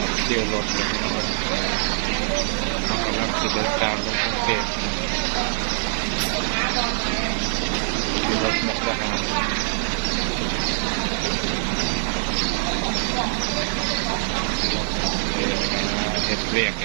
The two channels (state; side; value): silent; left; 56 dB below the other